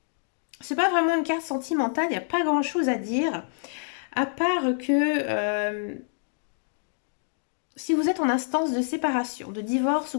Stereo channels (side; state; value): right; silent; digital silence